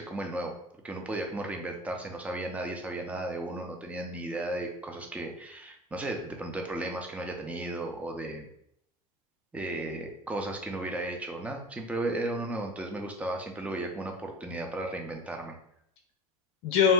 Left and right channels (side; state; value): both; normal; correlation 0.34